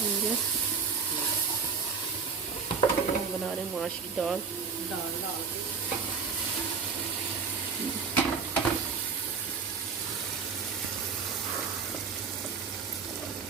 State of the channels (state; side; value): quieter; left; 5.7 dB